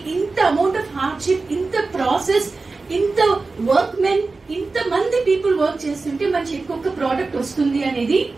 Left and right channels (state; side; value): quieter; left; 3.8 dB